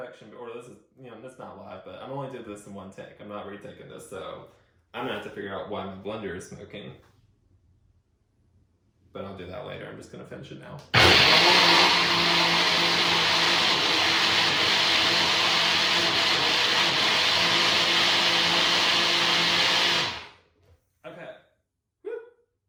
or this is, you know, that's not live, but I'm only doing this in one take. I'm not retaking this, so I'm gonna have to figure out why my blender is smoking. But I'll do that later. I'm just gonna finish it now. Okay. Woo.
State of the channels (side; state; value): both; identical; correlation 1.00